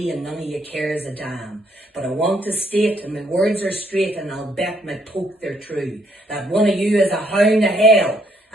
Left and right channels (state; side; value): normal; both; correlation 0.70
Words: and none of you cares a damn. But I want to state, and my words are straight, and I'll bet my poke they're true, that one of you is a hound of hell,